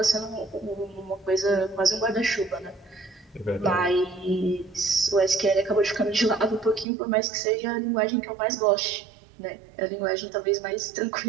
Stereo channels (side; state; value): left; drops out; at 6.9 s